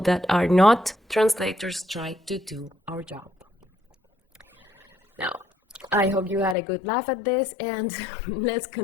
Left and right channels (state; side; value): drops out; right; at 6.6 s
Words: that are not translators try to do our job. Now, I hope you had a good laugh at this, and let's